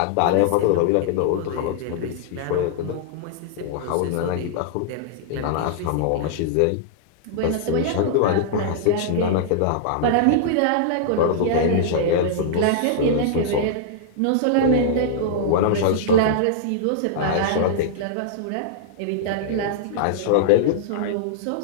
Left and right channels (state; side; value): different; both; correlation -0.01